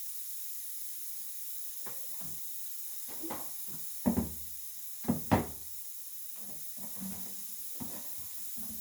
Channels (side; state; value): both; identical; correlation 1.00